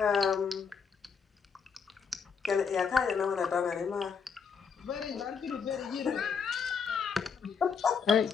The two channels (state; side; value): quieter; right; 6.0 dB